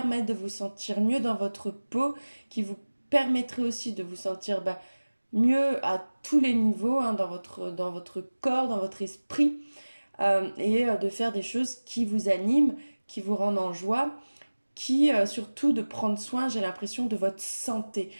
de vous sentir mieux dans votre peau, qui vous permettraient aussi de vous sentir mieux à tous les niveaux, hein, dans votre corps, dans votre esprit, et de faire des choses qui vous animent, qui vous rendent en joie, qui surtout de prendre soin, j'ai l'impression, de votre santé.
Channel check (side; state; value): both; inverted; correlation -1.00